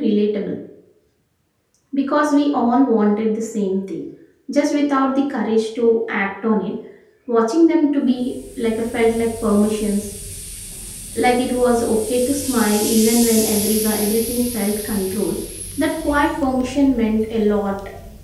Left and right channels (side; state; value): both; identical; correlation 1.00